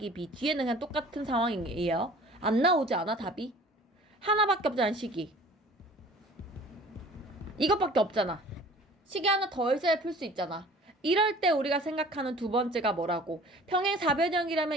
B 뒤에는 그냥 똑같은 상황이에요. 안 나오지 않아 답이? 하나밖에 없잖아 식이. 이것밖에 없잖아. 식이 하나 더 있어야 풀 수 있잖아. 이럴 때 우리가 생각하는 두 번째가 뭐라고?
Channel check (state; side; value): normal; both; correlation 0.47